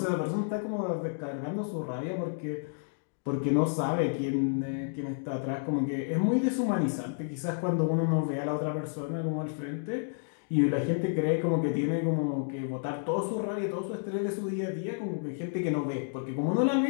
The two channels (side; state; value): right; silent; digital silence